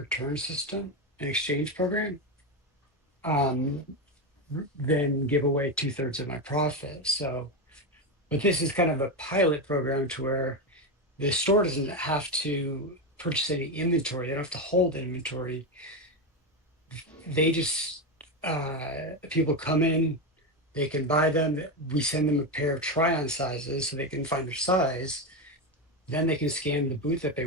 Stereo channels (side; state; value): both; normal; correlation 0.12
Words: system and exchange program um, than give away 2/3 of my profit. So, but this is kind of a pilot program to where the store doesn't have to purchase any inventory. They don't have to hold inventory. They just people come in, they can buy them. We send them a pair of try-on sizes so they can find their size. Then they can scan the boot that they